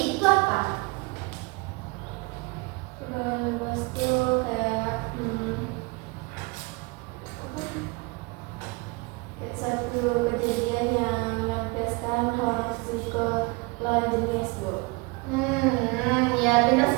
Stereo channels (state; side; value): quieter; left; 27.2 dB